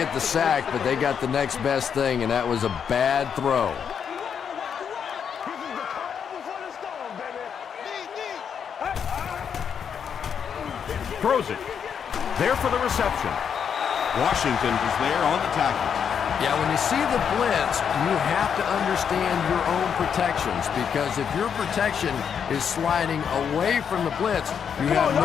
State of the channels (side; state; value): right; quieter; 7.5 dB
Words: the sack, but they got the next best thing, and that was a bad throw. Throws it. There for the reception. Washington is there on the tackle. Yeah, when you see the blitz, you have to understand your own protections, because if your protection is sliding away from the blitz, you have